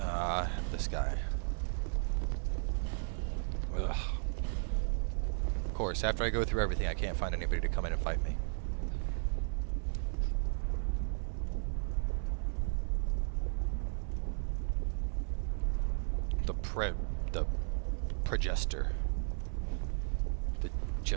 This guy. Ugh. Of course, after I go through everything, I can't find anybody to come in and fight me. The Progester. The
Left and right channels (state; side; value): silent; left; 54 dB below the other